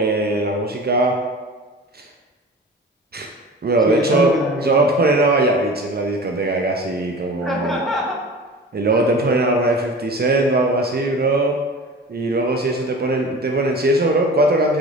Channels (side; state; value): both; normal; correlation 0.37